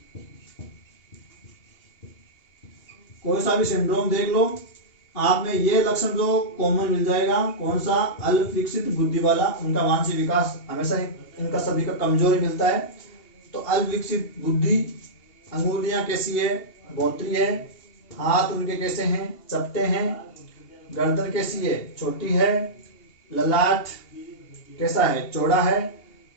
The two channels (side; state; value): right; late; 2.8 ms